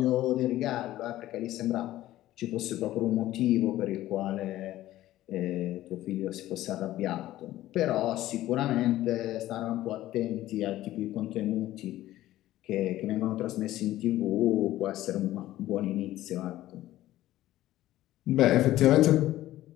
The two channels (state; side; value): quieter; right; 14.9 dB